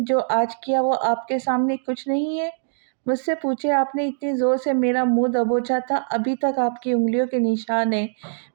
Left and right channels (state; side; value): silent; left; digital silence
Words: جو آج کیا وہ آپ کے سامنے کچھ نہیں ہے؟ مجھ سے پوچھے آپ نے اتنی زور سے میرا منہ دبوچا تھا، ابھی تک آپ کی انگلیوں کے نشان ہیں